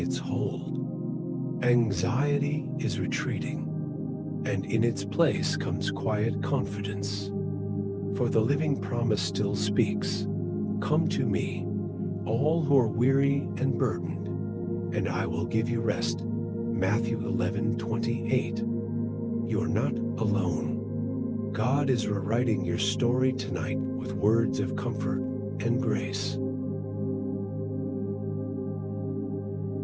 hold. Anxiety is retreating, and in its place comes quiet confidence. For the living promise still speaks, "Come to me, all who are weary and burdened, and I will give you rest." Matthew 11:28. You are not alone. God is rewriting your story tonight with words of comfort and grace.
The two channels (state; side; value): identical; both; correlation 1.00